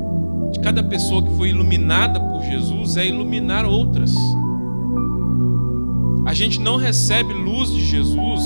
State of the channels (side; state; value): both; inverted; correlation -1.00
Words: cada pessoa que foi iluminada por Jesus é iluminar outras. A gente não recebe luz de